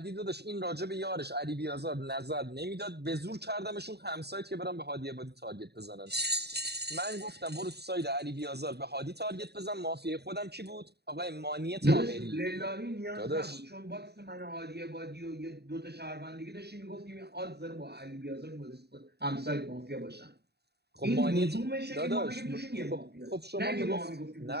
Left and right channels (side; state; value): left; late; 0.48 ms